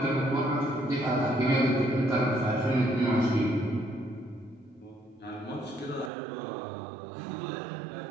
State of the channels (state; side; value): drops out; left; at 6.1 s